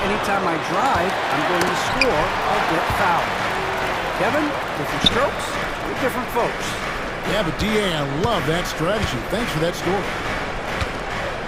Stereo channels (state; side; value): identical; both; correlation 1.00